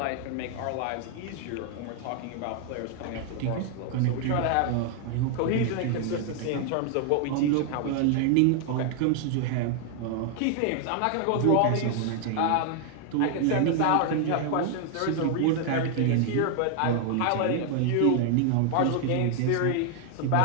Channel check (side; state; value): both; different; correlation 0.00